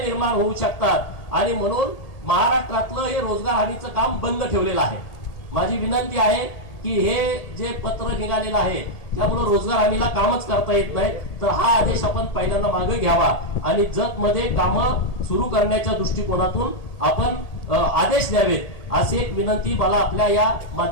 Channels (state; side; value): late; right; 1.8 ms